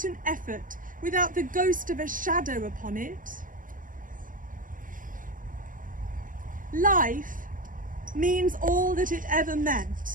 an effort, without the ghost of a shadow upon it. Life means all that it ever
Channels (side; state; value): left; late; 0.39 ms